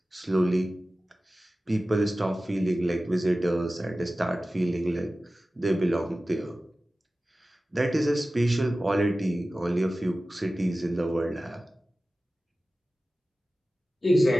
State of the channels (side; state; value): both; normal; correlation 0.96